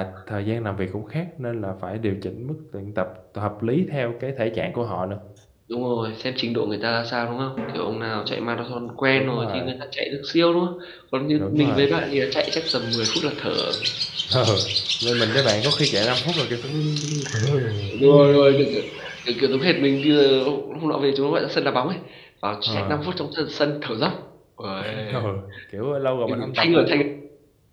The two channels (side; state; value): both; identical; correlation 1.00